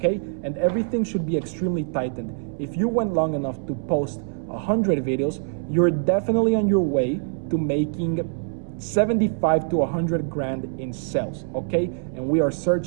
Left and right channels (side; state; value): left; silent; 62 dB below the other